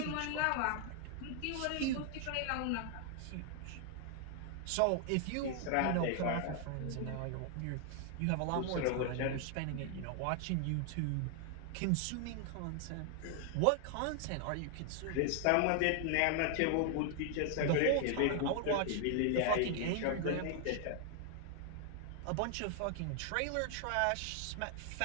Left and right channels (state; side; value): different; both; correlation 0.00